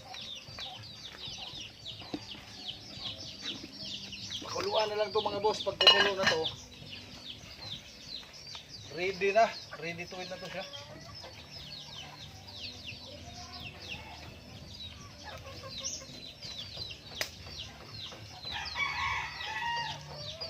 Pakuluan na lang to mga boss. Pag kumulo na to, ready na. Ready to eat na to siya.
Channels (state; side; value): identical; both; correlation 1.00